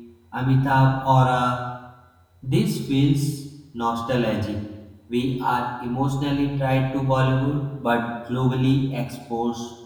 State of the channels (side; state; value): both; identical; correlation 1.00